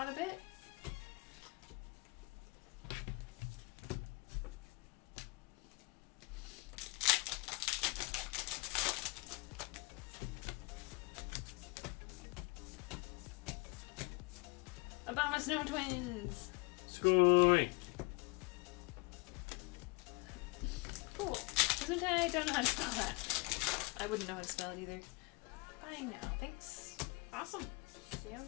of bit. Obama Snow Twins. Scoy. Cool. Gesundheit, don't know how to spell that. I wouldn't know how to spell it either. Bye now. Thanks. Awesome.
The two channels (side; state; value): right; quieter; 26.8 dB